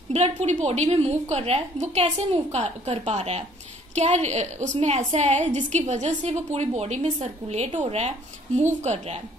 ब्लड पूरी बॉडी में मूव कर रहा है। वो कैसे मूव कर पा रहा है? क्या उसमें ऐसा है जिसकी वजह से वो पूरी बॉडी में सर्कुलेट हो रहा है, मूव कर रहा है?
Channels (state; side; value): normal; both; correlation 0.59